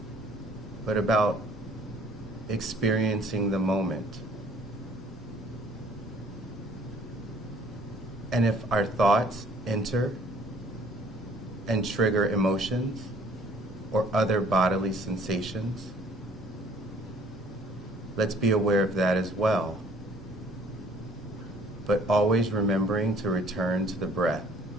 but about experiencing the moment. And if our thoughts enter and trigger emotions or other bodily sensations, let's be aware of that as well, but always remembering to return to the breath.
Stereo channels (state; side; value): normal; both; correlation 0.56